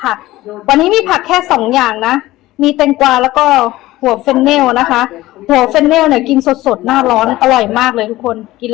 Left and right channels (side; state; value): right; quieter; 17.1 dB